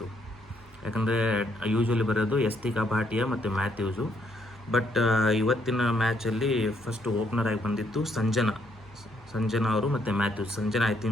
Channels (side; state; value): both; normal; correlation 0.72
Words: ಯಾಕಂದರೆ ಯೂಶ್ವಲಿ ಬರೋದು ಯಸ್ತಿಕಾ ಭಾಟಿಯಾ ಮತ್ತು ಮ್ಯಾಥ್ಯೂಸು. ಬಟ್ ಇವತ್ತಿನ ಮ್ಯಾಚಲ್ಲಿ ಫಸ್ಟ್ ಓಪನರ್ ಆಗಿ ಬಂದಿತ್ತು ಸಂಜನಾ ಅವರು ಮತ್ತು Mathews. Sanjana I